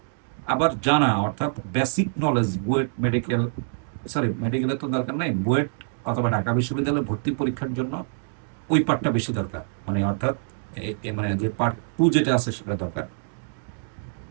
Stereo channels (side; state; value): left; silent; digital silence